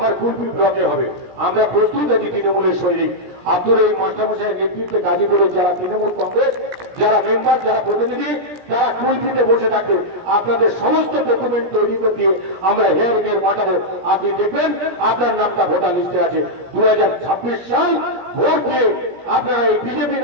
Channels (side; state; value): left; late; 17 ms